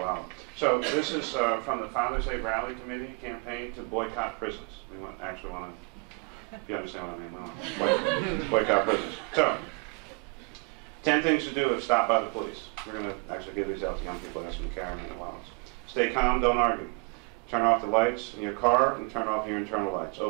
So this is from the Father's Day Rally Committee campaign to boycott prisons. We actually want to, if you understand what I mean, we want to boycott prisons. So, 10 things to do if stopped by the police. We're going to actually give these out to young people, ask them to carry them in their wallets. Stay calm, don't argue. Turn off the lights in your car and turn off your internal lights.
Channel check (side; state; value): left; quieter; 32.8 dB